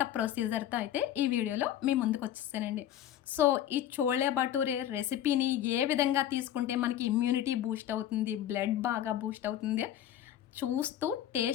ప్రొసీజర్‌తో అయితే ఈ వీడియోలో మీ ముందుకొచ్చేసానండి. సో, ఈ చోలే భటూరే రెసిపీని ఏ విధంగా తీసుకుంటే మనకి ఇమ్యూనిటీ బూస్ట్ అవుతుంది, బ్లడ్ బాగా బూస్ట్ అవుతుంది చూస్తూ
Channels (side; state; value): right; quieter; 11.3 dB